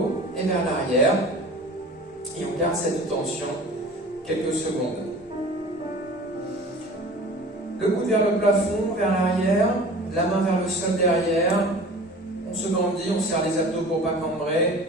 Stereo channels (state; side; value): normal; both; correlation 0.41